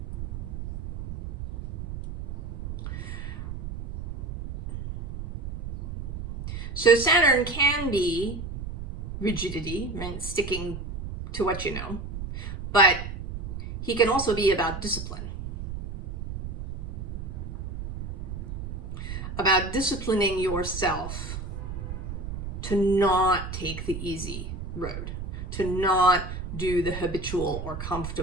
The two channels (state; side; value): noise; right; rumble, 7 dB below the sound